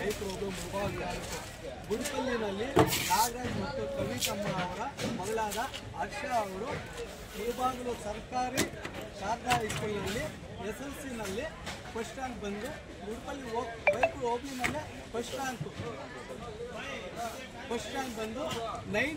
ರೋಗ ಮುಭಾಗ. ಗುಡಿಪಲ್ಲಿನಲ್ಲಿ ನಾಗರಾಜ್ ಮತ್ತು ಕವಿತಮ್ಮ ಅವರ ಮಗಳಾದ ಹರ್ಷ ಅವರು ಮುಳಬಾಗಿಲು ಸರ್ಕಾರಿ ಶಾರದಾ ಹೈಸ್ಕೂಲ್ನಲ್ಲಿ SLCನಲ್ಲಿ ಫಸ್ಟ್ ರ್ಯಾಂಕ್ ಬಂದು ಗುಡಿಪಲ್ಲಿ ಬೈಕ್ ಹೋಗ್ಲಿನಲ್ಲೇ ಫಸ್ಟ್ ರ್ಯಾಂಕ್ ಬಂದು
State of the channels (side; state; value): both; identical; correlation 1.00